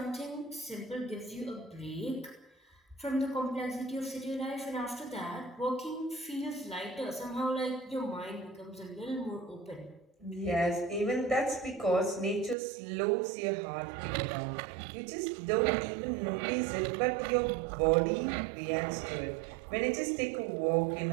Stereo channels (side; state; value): left; drops out; at 12.6 s